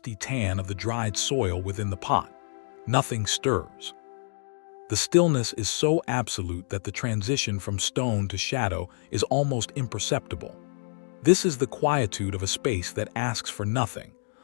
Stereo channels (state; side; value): silent; right; 60 dB below the other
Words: tan of the dried soil within the pot. Nothing stirs. The stillness is so absolute that the transition from stone to shadow is almost imperceptible. This is the quietude of a space that asks for nothing,